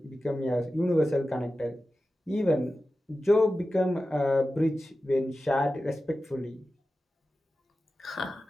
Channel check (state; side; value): normal; both; correlation 0.94